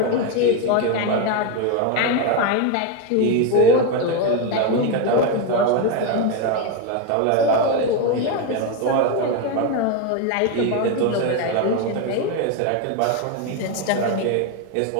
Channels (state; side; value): different; both; correlation 0.02